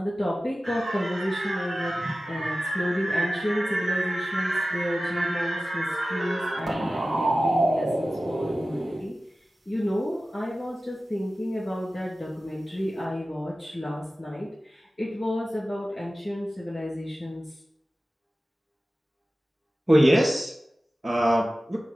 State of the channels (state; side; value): normal; both; correlation 0.96